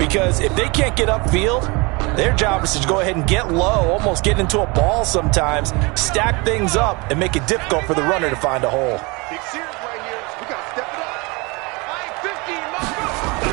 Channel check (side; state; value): left; quieter; 27.0 dB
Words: if they can't get upfield, their job is to go ahead and get low, almost get into a ball sometimes, stack things up, and make it difficult for the runner to find a hole.